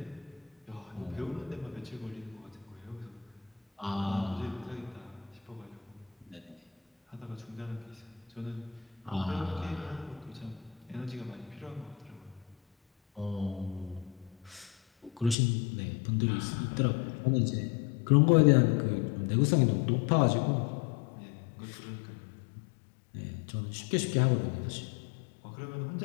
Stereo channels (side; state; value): right; drops out; at 15.4 s